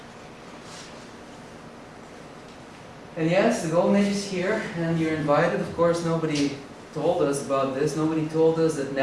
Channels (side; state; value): both; identical; correlation 1.00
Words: And yes, the golden age is here, and you're invited. Of course, nobody told us about this. Nobody told us that